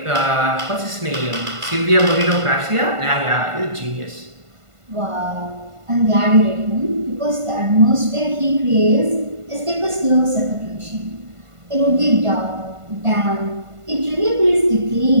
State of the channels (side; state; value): left; late; 1.5 ms